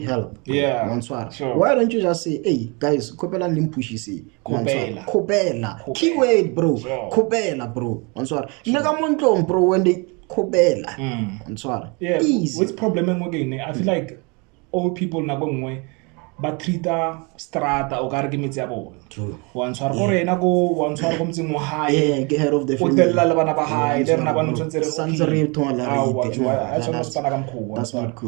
Why don't you just say, hey guys, kopela limpushi kopela. Keyword, bro. Kopela, bro. Nega bro, when they kopela. Easy. What's problem again? I feel like old people na gongwe ba treata strata o ka re ke metsi ya bona. Wa ntshwara gore ena go wa ntshwara go mtseng mo hae ke head of the family. O tella le bana ba hae le rena ba ntse re santsere thola that's not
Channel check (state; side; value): quieter; left; 30.5 dB